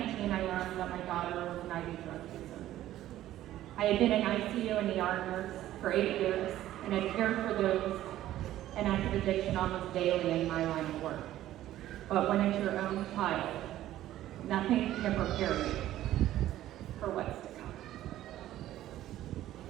I learned that my daughter was an IV drug user. I had been an ICU and ER nurse for 8 years and had cared for those in active addiction almost daily in my line of work. But when it's your own child, nothing can prepare you for what's to come.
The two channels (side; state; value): left; quieter; 13.6 dB